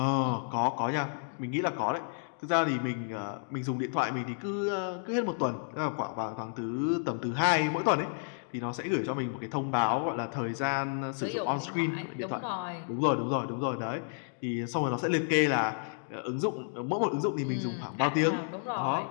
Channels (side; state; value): right; silent; digital silence